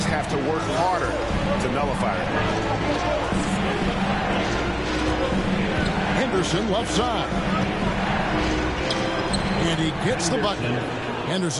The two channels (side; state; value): both; identical; correlation 1.00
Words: have to work harder to nullify it. Henderson left side. And he gets the bucket.